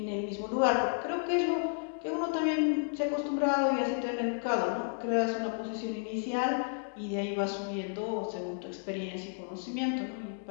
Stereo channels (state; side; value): silent; right; digital silence